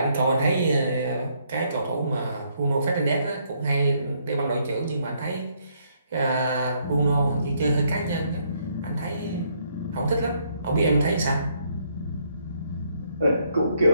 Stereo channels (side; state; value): both; inverted; correlation -0.71